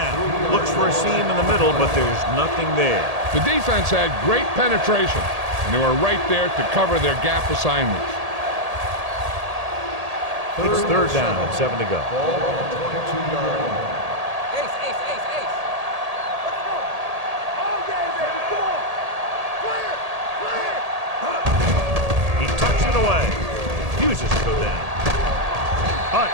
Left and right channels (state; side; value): late; left; 1.8 ms